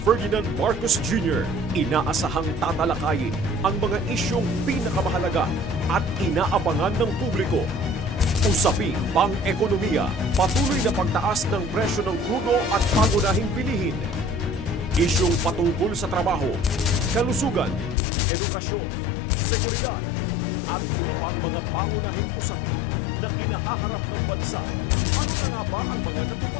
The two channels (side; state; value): right; drops out; at 17.9 s